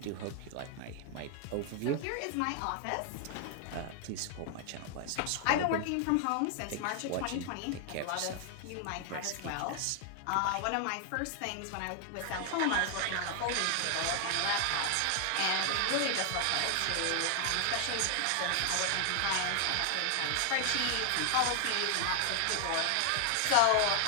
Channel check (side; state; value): both; different; correlation 0.00